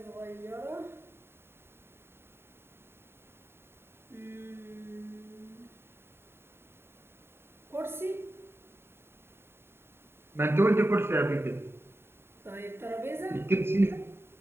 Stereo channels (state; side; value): late; left; 0.11 ms